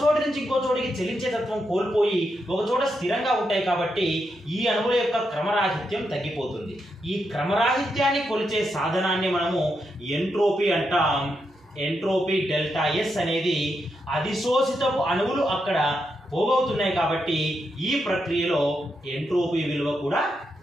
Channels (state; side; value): normal; both; correlation 0.83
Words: చోటు నుంచి ఇంకో చోటికి చలించే తత్వం కోల్పోయి ఒక చోట స్థిరంగా ఉంటాయి. కాబట్టి ఈ అణువుల యొక్క క్రమరాహిత్యం తగ్గిపోతుంది. ఈ క్రమరాహిత్యాన్ని కొలిచే సాధనాన్ని మనము ఎంట్రోపీ అంటాం. ఎంట్రోపీ డెల్టా ఎస్ అనేది అధిశోషితపు అణువులు అక్కడ పోగవుతున్నాయి కాబట్టి ఈ ప్రక్రియలో ఎంట్రోపీ విలువ కూడా